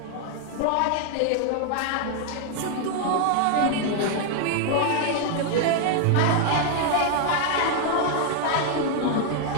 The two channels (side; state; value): both; different; correlation 0.00